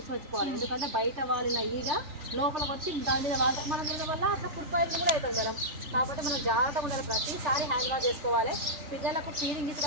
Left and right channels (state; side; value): late; left; 3.4 ms